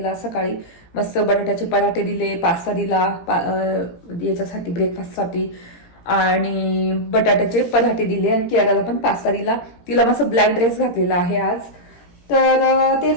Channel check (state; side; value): late; right; 17 ms